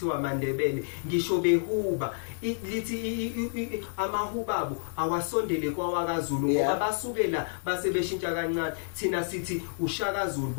aMandebele ngisho behuba lithi amahubabo awasondele kwaWakaZulu ngoba basukela base beshintsha kancane thina sithi uShakaZulu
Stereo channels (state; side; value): silent; right; 58 dB below the other